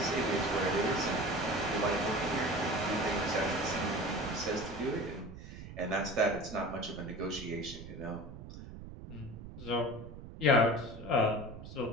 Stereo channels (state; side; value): noise; right; rumble, 13 dB below the sound